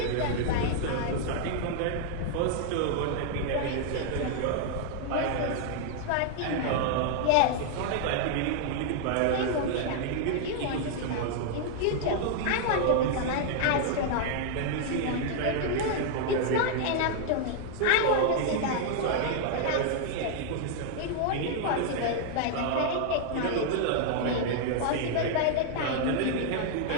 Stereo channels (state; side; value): different; both; correlation 0.00